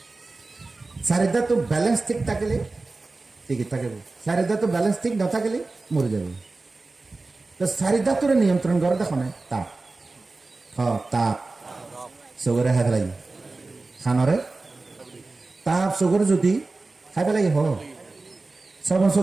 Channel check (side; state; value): left; quieter; 3.5 dB